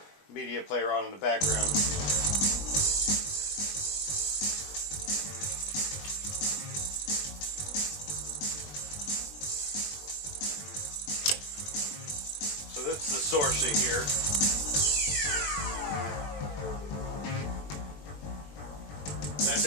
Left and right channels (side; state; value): right; late; 20 ms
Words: media player on in the background. So that's the sourcing here. That's